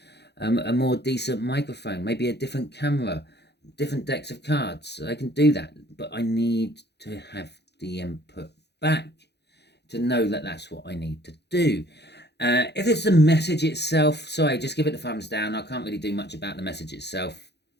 a more decent microphone, maybe a different camera, different decks of cards. I can do that, but I need to have the input back to know that that's what I need to do. If it's the message itself, sorry, just give it a thumbs down. I can't really do much about the message itself.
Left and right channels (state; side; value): late; right; 0.49 ms